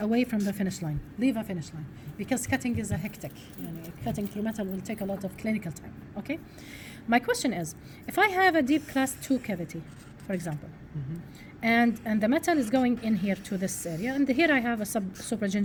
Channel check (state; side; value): identical; both; correlation 1.00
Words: from the finish line. Leave a finish line. Because cutting is a hectic. Cutting through metal will take a lot of clinical time, okay? My question is, if I have a deep class 2 cavity, for example, and the metal is going in here to this area, and here I have a